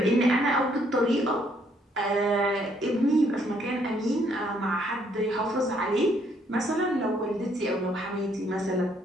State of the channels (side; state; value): both; normal; correlation 0.68